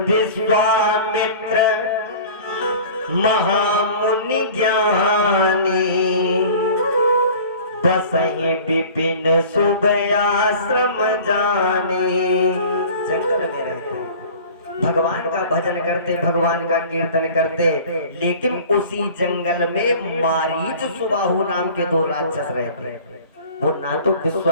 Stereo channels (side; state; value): both; inverted; correlation -0.43